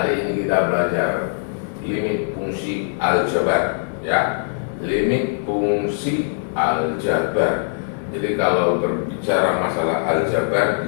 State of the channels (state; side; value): silent; right; digital silence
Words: ini kita belajar limit fungsi aljabar, ya, limit fungsi aljabar. Jadi kalau berbicara masalah aljabar,